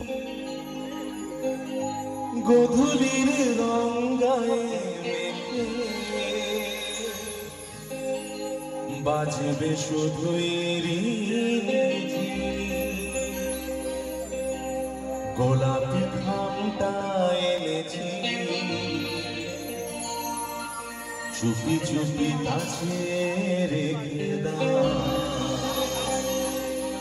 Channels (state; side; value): identical; both; correlation 1.00